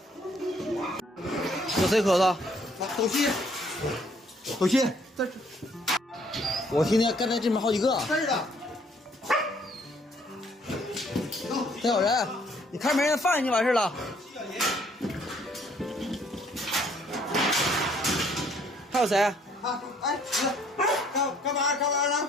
有谁咳嗽？斗气，斗气，这是我听见刚才这边好几个。这儿的。还有人，你看没人放进去完事了。还有谁？啊，哎，干嘛呢？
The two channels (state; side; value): normal; both; correlation 0.64